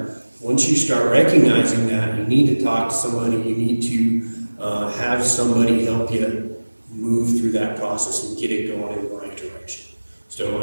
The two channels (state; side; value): inverted; both; correlation -1.00